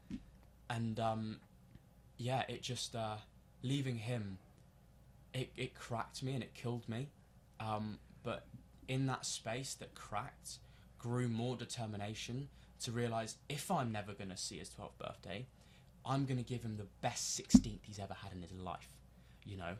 And it just leaving him, it cracked me and it killed me. But in that space that cracked, grew more determination to realise, if I'm never going to see his 12th birthday, I'm going to give him the best 16th he's ever had in his life. You know,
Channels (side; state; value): both; identical; correlation 1.00